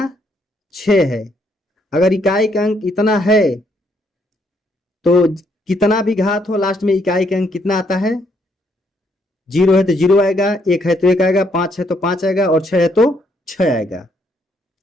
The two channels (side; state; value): both; normal; correlation 0.72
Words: 6 है। अगर इकाई का अंक इतना है तो कितना भी घात हो लास्ट में इकाई का अंक कितना आता है, 0 है तो 0 आएगा, 1 है तो 1 आएगा, 5 है तो 5 आएगा और 6 है तो 6 आएगा।